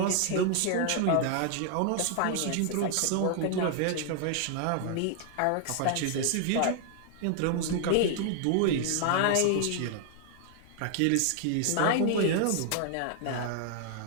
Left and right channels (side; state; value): both; different; correlation 0.00